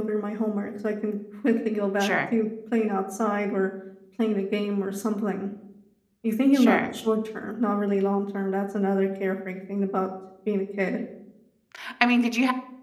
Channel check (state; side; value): identical; both; correlation 1.00